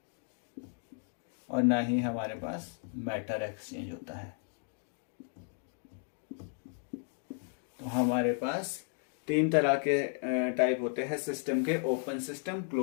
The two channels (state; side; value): silent; right; 55 dB below the other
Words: और ना ही हमारे पास मैटर एक्सचेंज होता है. तो हमारे पास तीन तरह के टाइप होते हैं सिस्टम के: open system,